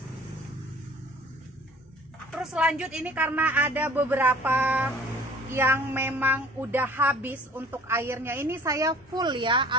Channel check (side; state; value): both; normal; correlation 0.49